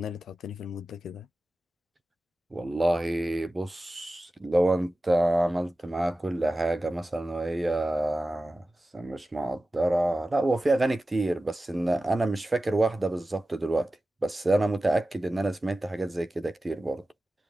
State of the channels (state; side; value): normal; both; correlation 0.95